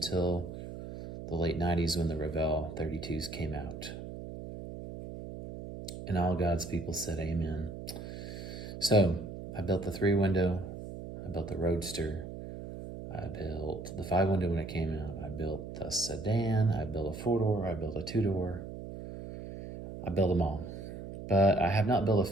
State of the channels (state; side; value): noise; right; hum, 10 dB below the sound